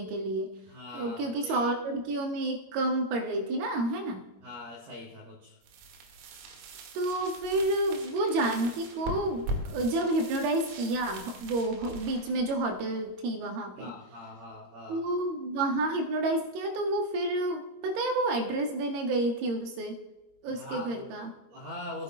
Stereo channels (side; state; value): left; late; 22 ms